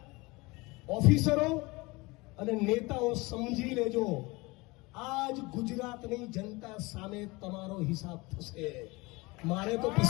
ઓફિસરો અને નેતાઓ સમજી લેજો, આજ ગુજરાતની જનતા સામે તમારો હિસાબ થશે. મારે તો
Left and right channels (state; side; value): quieter; right; 24.0 dB